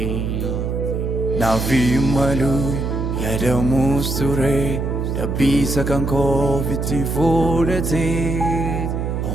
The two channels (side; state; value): right; noise; hum, 1 dB below the sound